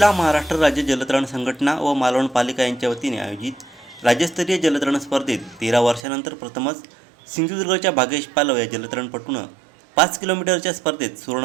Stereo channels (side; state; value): left; drops out; at 6.1 s